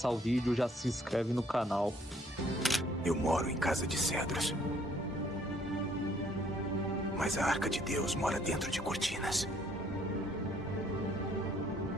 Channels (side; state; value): both; normal; correlation 0.63